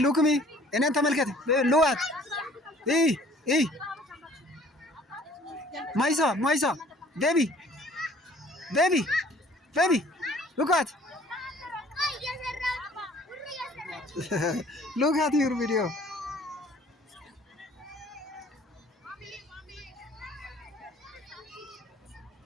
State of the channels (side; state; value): both; normal; correlation 0.54